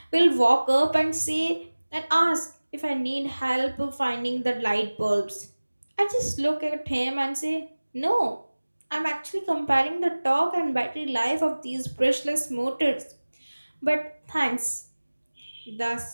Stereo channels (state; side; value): inverted; both; correlation -1.00